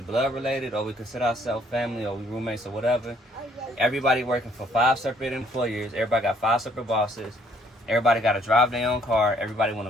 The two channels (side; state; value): both; normal; correlation 0.64